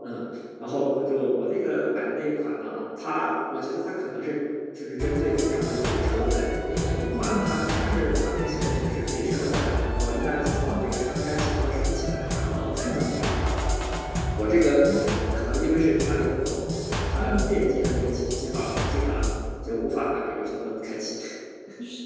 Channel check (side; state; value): both; identical; correlation 1.00